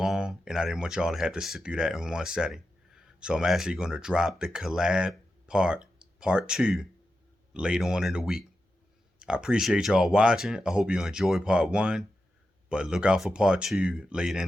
and I didn't want y'all to have to sit through that in one setting. So I'm actually gonna drop the collab part 2, later on in the week. I appreciate y'all watching. I hope you enjoyed part 1, but look out for part 2 later in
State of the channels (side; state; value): both; normal; correlation 0.89